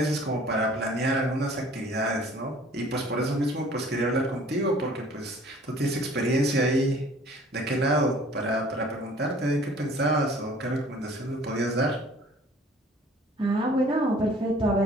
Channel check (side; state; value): both; normal; correlation 0.52